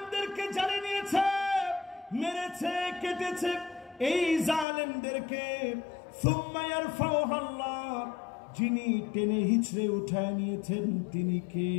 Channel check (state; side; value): drops out; right; at 4.7 s